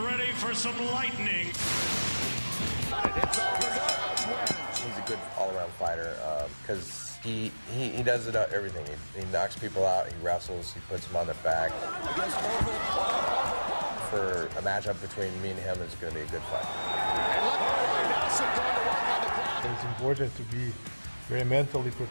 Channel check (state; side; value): inverted; both; correlation -1.00